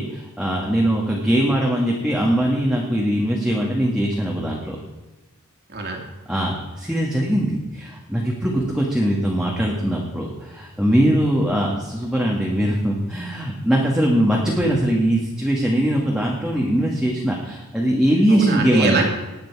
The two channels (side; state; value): both; normal; correlation 0.83